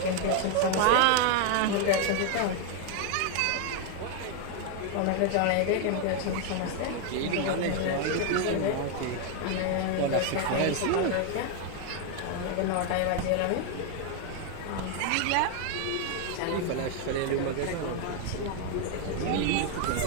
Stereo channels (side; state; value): both; different; correlation 0.01